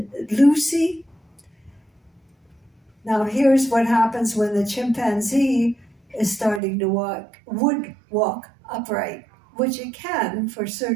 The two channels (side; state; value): left; drops out; at 6.6 s